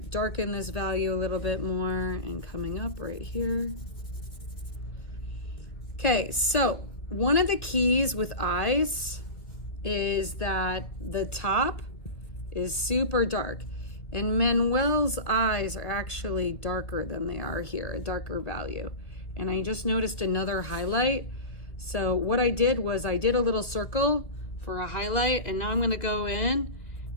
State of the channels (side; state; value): right; late; 2.3 ms